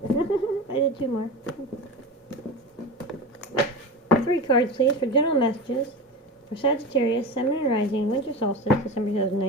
I did two more. 3 cards, please, for general messages for Sagittarius, Sun and Rising, Winter Solstice, December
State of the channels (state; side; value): normal; both; correlation 0.27